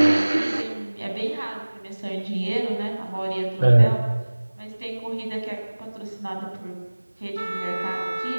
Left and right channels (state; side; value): inverted; both; correlation -1.00